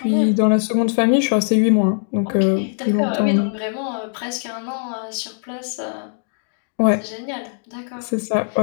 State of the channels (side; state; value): right; silent; 65 dB below the other